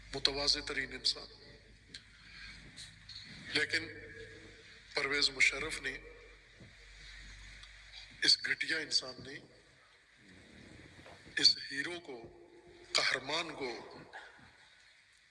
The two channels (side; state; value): both; identical; correlation 1.00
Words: متواضع ترین انسان. لیکن پرویز مشرف نے، اس گھٹیا انسان نے اس ہیرو کو، قہرمان کو،